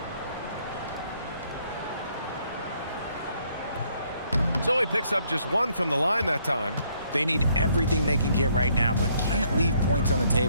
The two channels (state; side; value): inverted; both; correlation -0.68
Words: So he picks up just one from the line that time. They need everything they can get right now, but can't leave points on the